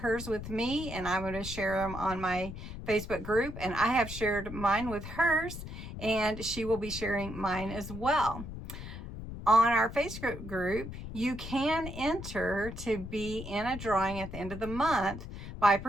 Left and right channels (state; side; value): noise; left; rumble, 10 dB below the sound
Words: with me, and I'm going to share them on my Facebook group, and I have shared mine with hers, and she will be sharing mine as well. On our Facebook group, you can enter to be in a drawing at the end of the month by